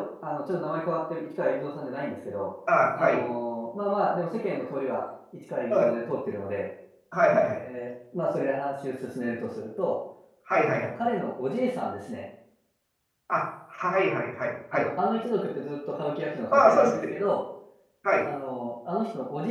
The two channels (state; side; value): identical; both; correlation 1.00